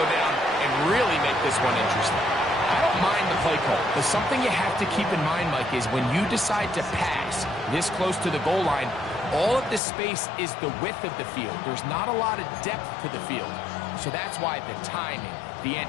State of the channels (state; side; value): drops out; right; at 9.8 s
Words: down and really make this one interesting? I don't mind the play call, but something you have to keep in mind, Mike, is when you decide to pass this close to the goal line, all of the space is the width of the field. There's not a lot of depth to the field. So that's why the timing, the